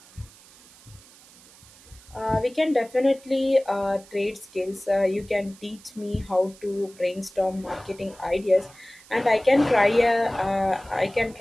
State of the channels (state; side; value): noise; right; hiss, 24 dB below the sound